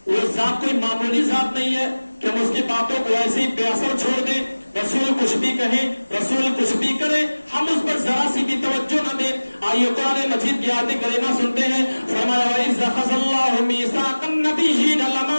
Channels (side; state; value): both; inverted; correlation -1.00